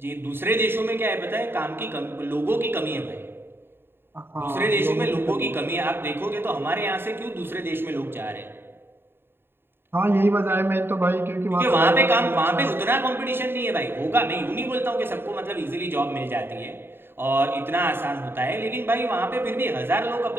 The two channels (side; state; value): left; late; 0.11 ms